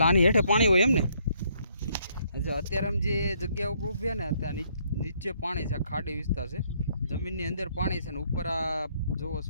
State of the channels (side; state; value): both; inverted; correlation -0.69